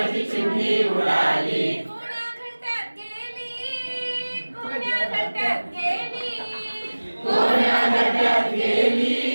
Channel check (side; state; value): both; inverted; correlation -1.00